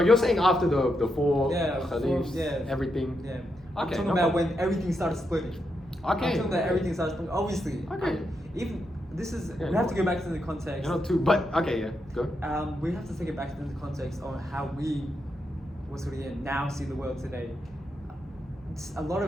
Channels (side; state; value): both; normal; correlation 0.83